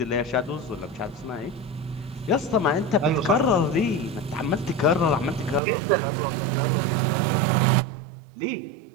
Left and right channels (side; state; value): left; drops out; at 5.6 s